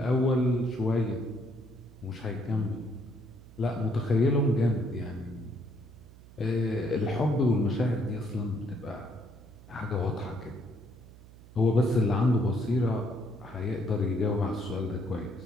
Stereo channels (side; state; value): right; noise; hum, 21 dB below the sound